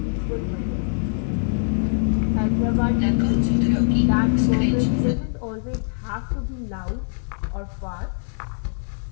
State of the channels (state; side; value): silent; right; digital silence